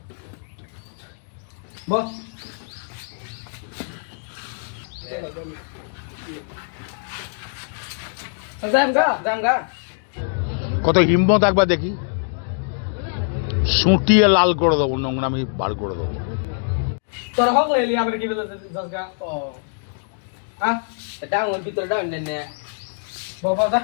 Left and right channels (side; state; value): right; silent; digital silence